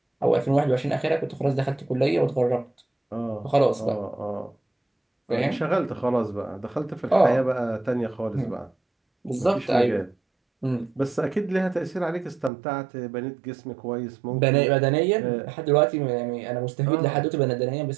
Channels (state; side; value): drops out; left; at 12.5 s